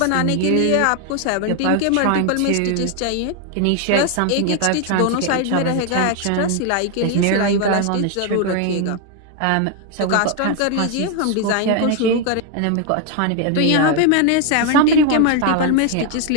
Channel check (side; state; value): both; different; correlation 0.01